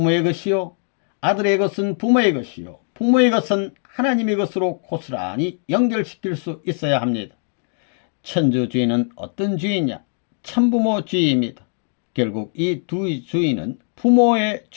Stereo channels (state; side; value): silent; right; 55 dB below the other